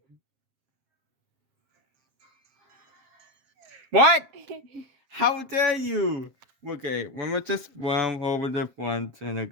What? How dare you? Okay, let me just run over the front and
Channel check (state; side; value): late; left; 7.5 ms